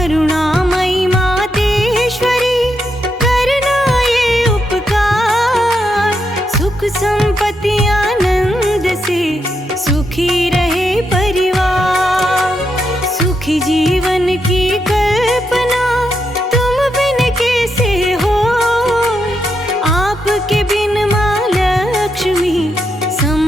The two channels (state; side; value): normal; both; correlation 0.82